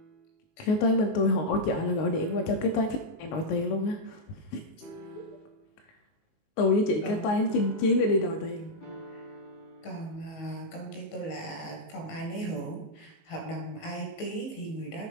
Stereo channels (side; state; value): right; late; 19 ms